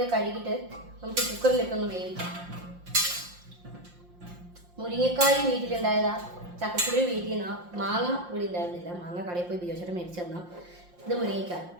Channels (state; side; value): late; left; 5.7 ms